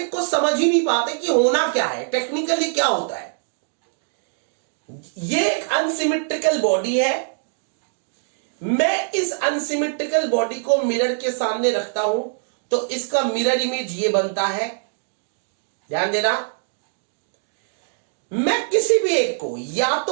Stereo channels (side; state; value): left; silent; digital silence